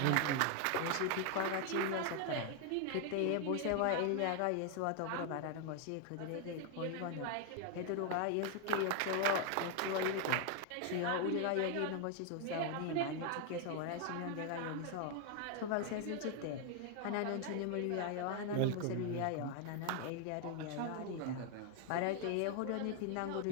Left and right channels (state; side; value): different; both; correlation 0.00